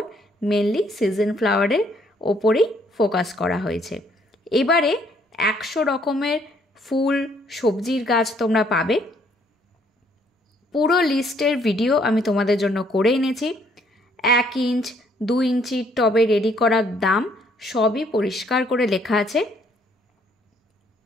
মেনলি সিজন ফ্লাওয়ারের ওপরেই ফোকাস করা হয়েছে। এবারে 100 রকমের ফুল সবজির গাছ তোমরা পাবে। পুরো লিস্টের ভিডিও আমি তোমাদের জন্য করে এনেছি। 1 ইঞ্চ 2 ইঞ্চির টবে রেডি করার দাম সবই পরিষ্কার করে লেখা আছে।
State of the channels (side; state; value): both; normal; correlation 0.66